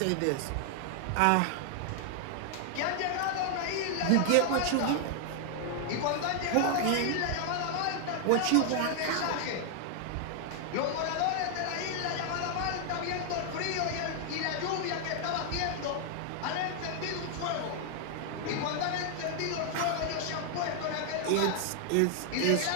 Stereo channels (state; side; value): different; both; correlation 0.00